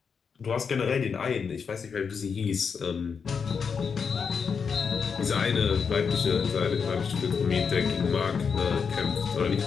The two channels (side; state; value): right; quieter; 6.0 dB